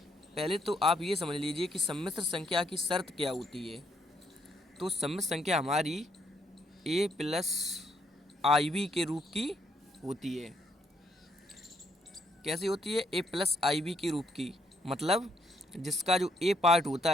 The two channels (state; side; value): normal; both; correlation 0.72